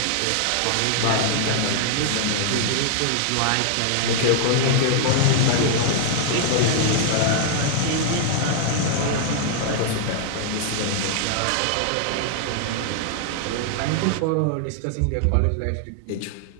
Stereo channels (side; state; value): both; different; correlation 0.00